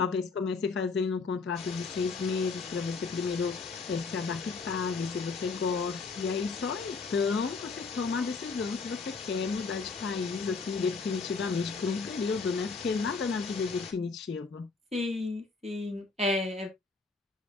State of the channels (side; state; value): right; quieter; 4.5 dB